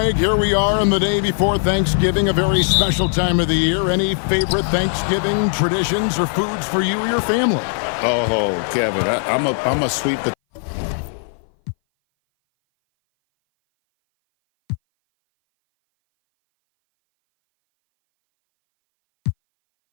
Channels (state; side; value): silent; right; 60 dB below the other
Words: here we are on the day before Thanksgiving, a very special time of the year. Any favorite Thanksgiving traditions or foods for you or your family? Oh, Kevin, I'm a sweet potato.